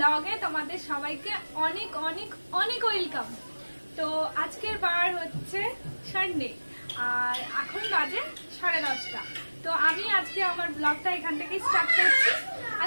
তোমাদের সবাইকে অনেক অনেক অনেক ওয়েলকাম। তো আজকের বার হচ্ছে সানডে আর এখন বাজে 10:30। তো আমি আজকে আমার ব্লগটা এখান থেকে স্টার্ট করছি।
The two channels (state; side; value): inverted; both; correlation -1.00